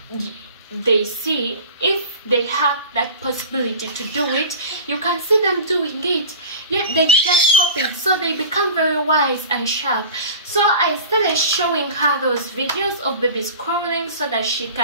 they see. If they have that possibility to do it, you can see them doing it, yet they just copy it. So they become very wise and sharp. So I started showing her those videos of babies crawling so that she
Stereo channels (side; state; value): both; inverted; correlation -0.37